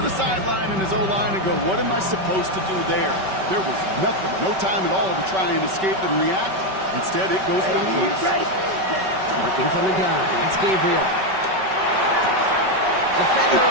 the sideline and his O-line and go, what am I supposed to do there? There was nothing, no time at all to try and escape and react. Instead, it goes backwards. Working from the gun. That's Gabriel.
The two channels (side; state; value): left; late; 5.3 ms